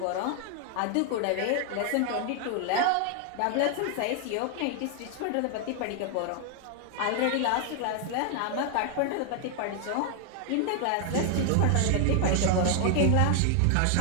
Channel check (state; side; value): different; both; correlation 0.00